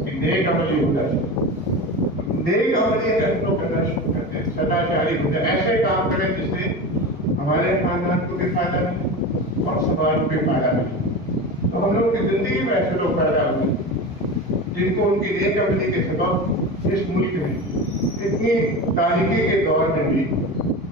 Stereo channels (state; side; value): normal; both; correlation 0.27